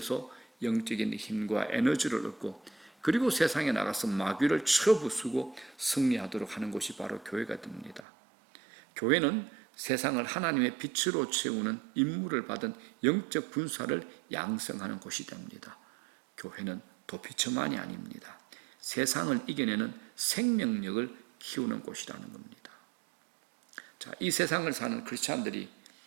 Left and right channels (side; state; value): left; drops out; at 8.0 s